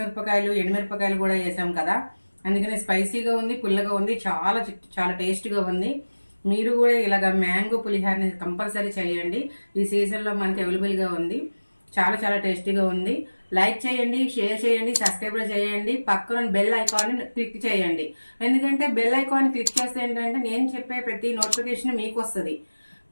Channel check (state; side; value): inverted; both; correlation -1.00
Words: ఎండుమిరపకాయలు కూడా వేసాం కదా, అందుకని స్పైసీగా ఉంది, పుల్లగా ఉంది, చాలా చాలా టేస్ట్గా ఉంది. మీరు కూడా ఇలాగ మ్యాంగో పులిహోరని కంపల్సరీ చేయండి. ఈ సీజన్లో మనకి అవైలబుల్గా ఉంది. చాలా చాలా టేస్టీగా ఉంది. లైక్ చేయండి, షేర్ చేయండి, సబ్స్క్రైబ్ చేయండి. పక్కన బెల్ ఐకాన్ క్లిక్ చేయండి. ఎందుకంటే బెల్ ఐకాన్ క్లిక్ చేస్తే ఏంటంటే నేను చెప్పే ప్రతి నోటిఫికేషన్ మీకు వస్తుంది.